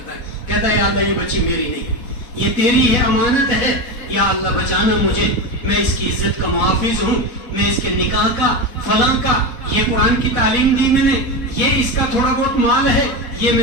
ہے، کہتا ہے یا اللہ یہ بچی میری نہیں، یہ تیری ہے، امانت ہے، یا اللہ بچانا مجھے، میں اس کی عزت کا محافظ ہوں، میں اس کے نکاح کا فلاں کا، یہ قرآن کی تعلیم دی میں نے، یہ اس کا تھوڑا بہت مال ہے، یہ میں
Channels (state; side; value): late; right; 4.1 ms